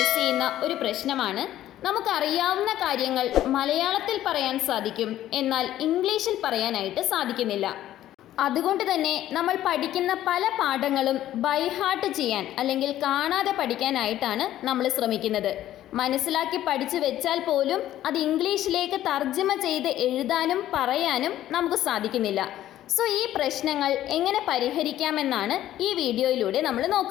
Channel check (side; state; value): right; quieter; 13.0 dB